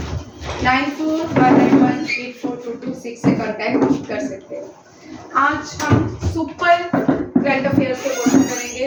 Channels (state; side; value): identical; both; correlation 1.00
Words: 9419184226 से कांटेक्ट कर सकते हैं। आज हम सुपर करंट अफेयर्स के क्वेश्चन करेंगे